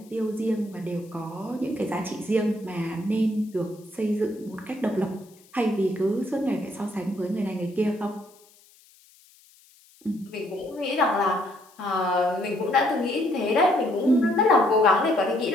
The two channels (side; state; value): left; noise; hiss, 28 dB below the sound